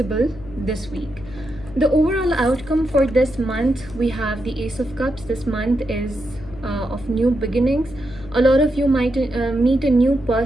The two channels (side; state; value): left; noise; hum, 16 dB below the sound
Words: this week. The overall outcome for this month, we have the Ace of Cups. This month is of new beginnings. A lot of you might meet a new